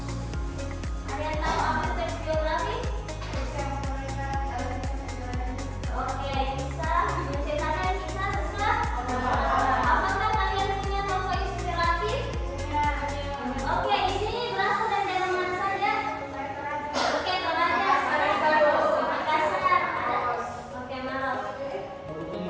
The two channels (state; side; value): identical; both; correlation 1.00